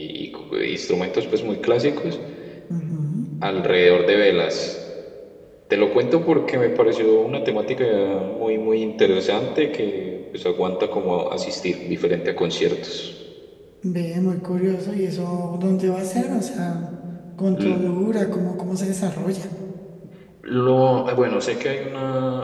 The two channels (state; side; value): identical; both; correlation 1.00